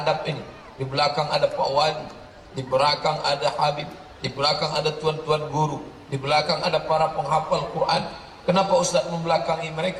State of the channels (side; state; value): both; identical; correlation 1.00